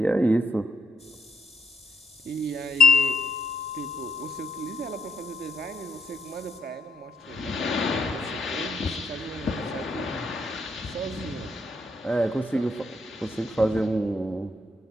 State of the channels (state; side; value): normal; both; correlation 0.74